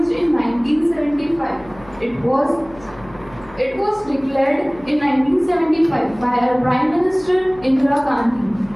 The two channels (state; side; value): noise; left; hum, 22 dB below the sound